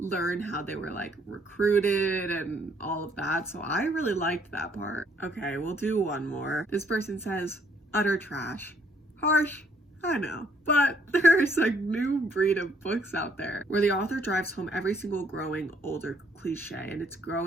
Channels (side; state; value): both; normal; correlation 0.67